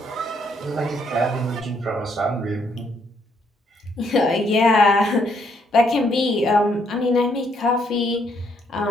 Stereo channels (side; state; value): both; normal; correlation 0.72